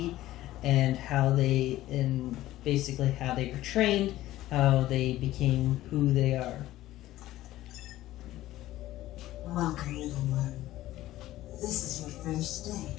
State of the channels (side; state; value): right; quieter; 15.3 dB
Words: and how they, and basically how they were trained, how they became who they are. Welcome, little one. This is your first day.